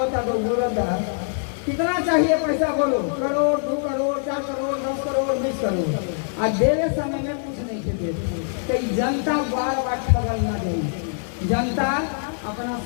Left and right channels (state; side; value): silent; right; digital silence